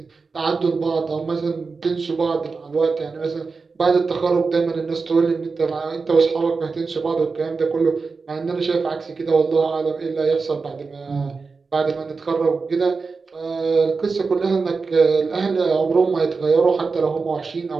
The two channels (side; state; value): left; quieter; 4.5 dB